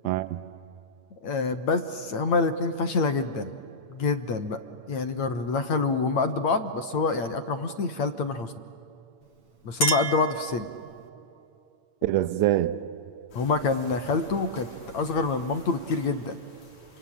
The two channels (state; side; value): late; right; 8.8 ms